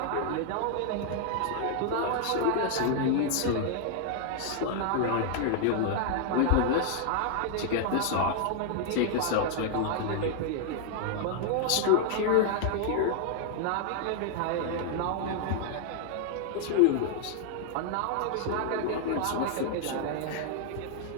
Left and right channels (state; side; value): different; both; correlation 0.00